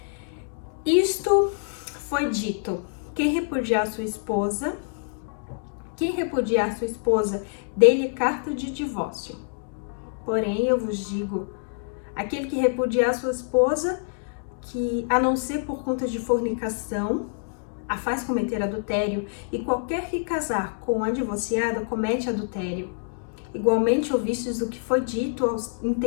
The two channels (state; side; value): silent; right; digital silence